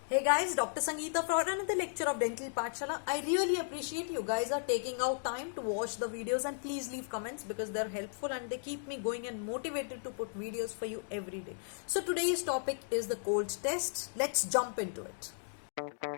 Hey guys, Dr. Sangeeta for another lecture of Dental Pathshala. I really appreciate you guys are taking out time to watch the videos, and please leave comments because they're helpful and they keep me going and motivated to put videos for you every day. So today's topic is the cold test. Let's jump into it.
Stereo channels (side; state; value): right; silent; digital silence